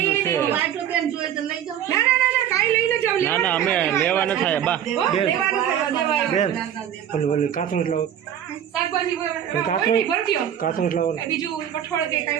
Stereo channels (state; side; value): quieter; left; 10.0 dB